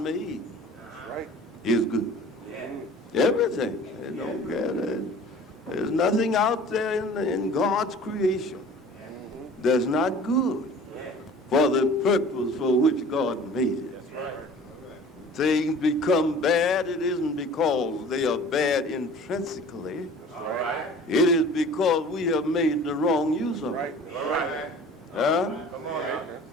is good. Everything. There's nothing out there in God's creation that's not good for the purpose for which God made it. Things become bad, it isn't because they are bad intrinsically. It is because we have made the wrong use of it.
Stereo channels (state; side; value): normal; both; correlation 0.45